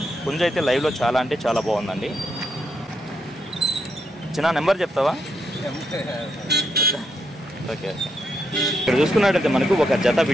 పుంజ అయితే లైవ్లో చాలా అంటే చాలా బాగుందండి. చిన్న నెంబర్ చెప్తావా? ఓకే. ఇక్కడ చూసుకున్నట్టయితే మనకు ఒక జత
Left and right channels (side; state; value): both; normal; correlation 0.79